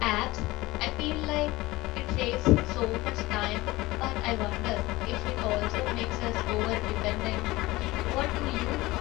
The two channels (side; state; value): right; quieter; 19.8 dB